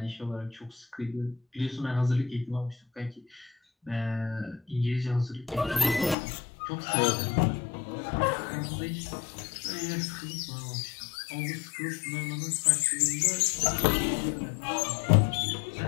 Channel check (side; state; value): right; drops out; at 6.2 s